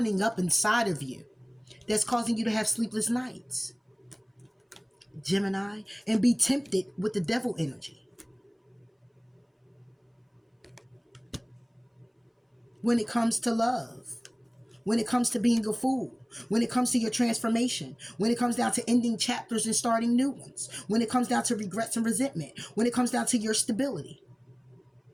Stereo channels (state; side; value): identical; both; correlation 1.00